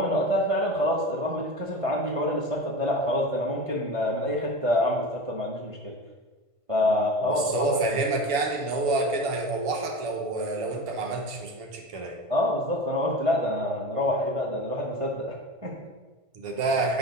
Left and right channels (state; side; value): late; left; 1.5 ms